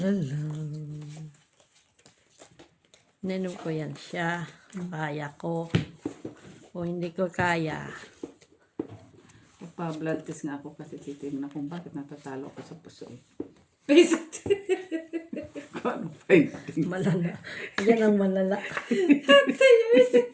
la. Ninom ko yan siya. Kaya ko. O hindi ko kaya. Pa-blood test nga ako kasi titignan kung bakit natatalo ako sa puso. Basic. Ano finding? Malala. Yan ang malala.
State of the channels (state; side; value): identical; both; correlation 1.00